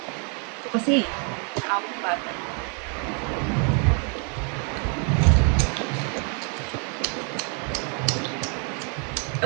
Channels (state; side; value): quieter; left; 38.8 dB